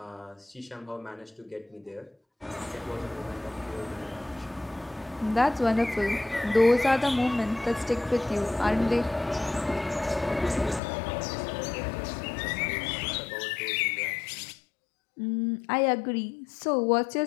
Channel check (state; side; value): drops out; right; at 10.8 s